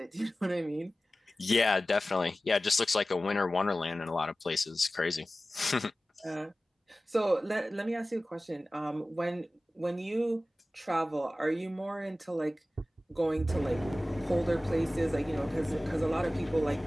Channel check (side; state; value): both; normal; correlation 0.96